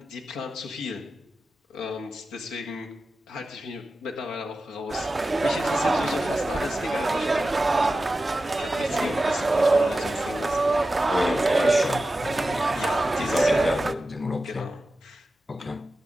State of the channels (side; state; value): both; normal; correlation 0.93